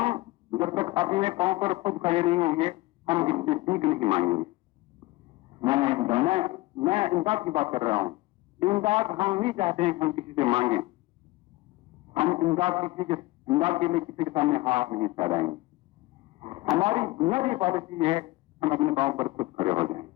جب تک اپنے پاؤں پر خود کھڑے نہیں ہوں گے ہم کسی سے سیکھ نہیں مانگیں گے. میں امداد کی بات کر رہا ہوں. امداد ہم نہیں چاہتے ہیں کہ ہم کسی سے مانگیں. ہم امداد کے لیے کسی کے سامنے ہاتھ نہیں پھیلائیں گے. ہماری بنیادی پالیسی ہے ہم اپنے پاؤں پر خود کھڑے ہو جائیں.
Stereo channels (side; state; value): right; quieter; 20.1 dB